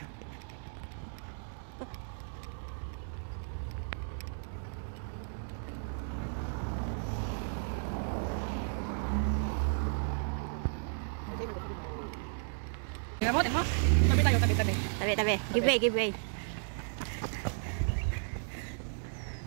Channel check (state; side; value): silent; left; digital silence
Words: mo, tingnan mo. Tabi tayo, tabi. Tabi. Give way, give way.